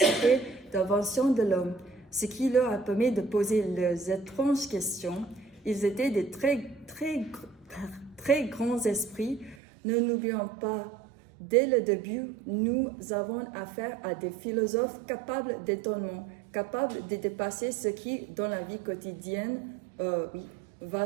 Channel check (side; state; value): left; drops out; at 9.6 s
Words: d'invention de l'homme, ce qui leur a permis de poser leurs étranges questions. Ils étaient des très grands esprits. Ne n'oublions pas, dès le début, nous avons affaire à des philosophes capables d'étonnement, capables de dépasser ce qui, dans la vie quotidienne,